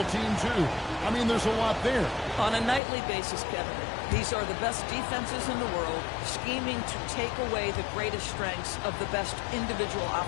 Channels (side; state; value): right; drops out; at 2.8 s